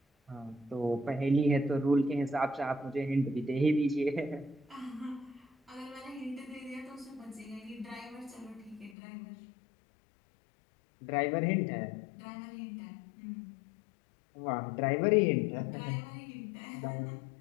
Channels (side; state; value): right; drops out; at 9.0 s